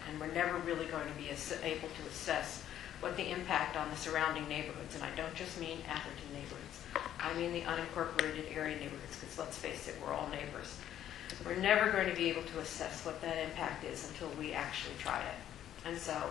and we're never really going to be able to assess what the impact on the surrounding neighborhoods, and I don't just mean Atherton neighborhoods, I mean the unincorporated area neighborhoods, because let's face it, we're all neighbors. We're never going to be able to assess what that impact is until we actually try it. And so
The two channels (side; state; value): right; quieter; 11.2 dB